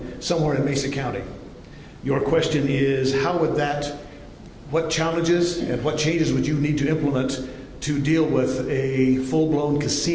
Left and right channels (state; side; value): identical; both; correlation 1.00